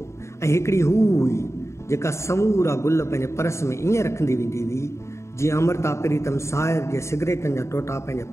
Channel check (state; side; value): late; right; 0.14 ms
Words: ऐं हिकिड़ी हू हुई जेका समूरा गुल पंहिंजे पर्स में ईअं रखंदी वेंदी हुई जीअं अमृता प्रीतम साहिर जे सिगरेटनि जा टोटा पंहिंजे